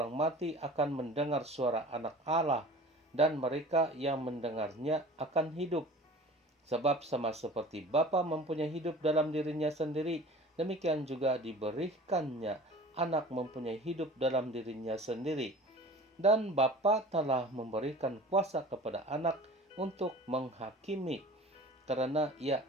mati akan mendengar suara Anak Allah, dan mereka yang mendengarnya akan hidup. Sebab sama seperti Bapa mempunyai hidup dalam dirinya sendiri, demikian juga diberikannya anak mempunyai hidup dalam dirinya sendiri. Dan Bapa telah memberikan kuasa kepada anak untuk menghakimi, karena ia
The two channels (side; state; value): both; normal; correlation 0.42